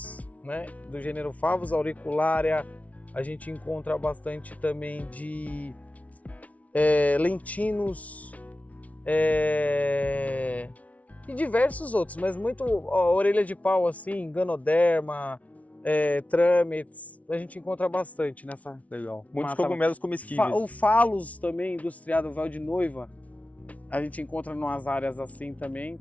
né? Do gênero Favus auricularia. A gente encontra bastante também de lentinos e diversos outros, mas muito orelha de pau assim, ganoderma, trâmites, a gente encontra bastante nessa. Legal. Muitos mata. cogumelos comestíveis. O Phallus também, industriado, véu de noiva, a gente encontra em umas áreas assim também,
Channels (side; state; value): right; late; 0.068 ms